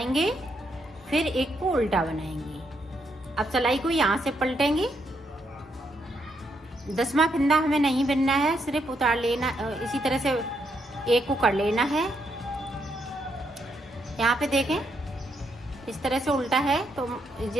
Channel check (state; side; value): normal; both; correlation 0.77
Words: फिर एक को उल्टा बनाएंगे। अब सिलाई को यहाँ से पलटेंगे। 10वां फिंदा हमें नहीं बिनना है, सिर्फ उतार लेना, इसी तरह से एक को कर लेना है। यहाँ पे देखें इस तरह से उल्टा है तो